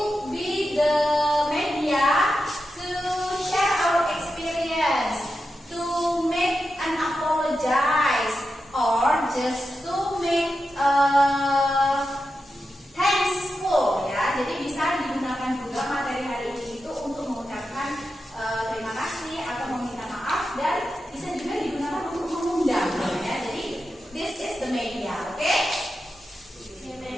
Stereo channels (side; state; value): both; normal; correlation 0.89